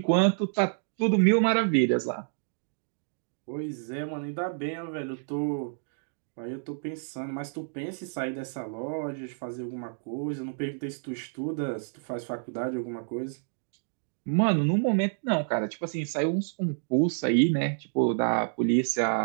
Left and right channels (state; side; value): silent; left; digital silence